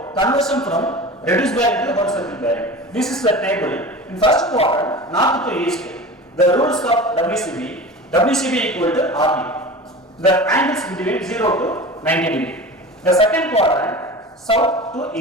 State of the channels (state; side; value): normal; both; correlation 0.34